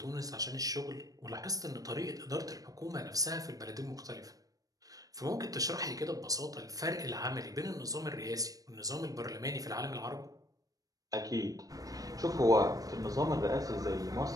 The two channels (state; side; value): late; left; 0.17 ms